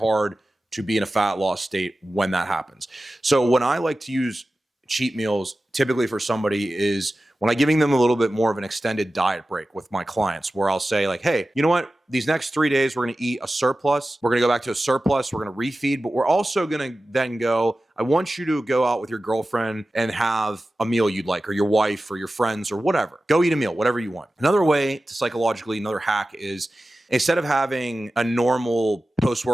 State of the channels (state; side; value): normal; both; correlation 0.95